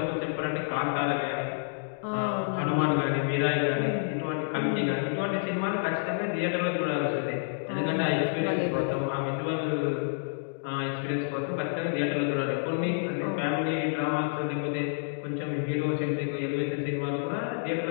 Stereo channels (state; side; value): silent; right; digital silence